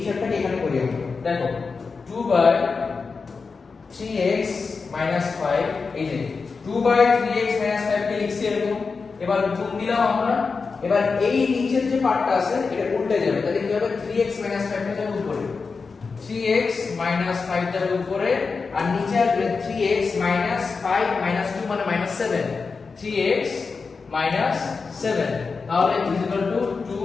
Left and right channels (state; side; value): quieter; right; 4.7 dB